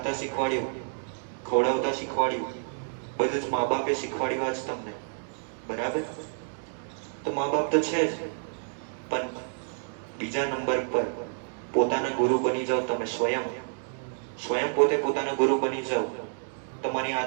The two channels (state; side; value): silent; left; digital silence